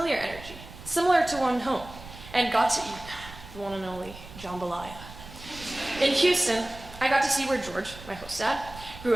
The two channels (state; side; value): noise; right; rumble, 16 dB below the sound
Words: energy, similar to one home, and got to eat the one and only jambalaya. In Houston, I got to see where George, my host dad, grew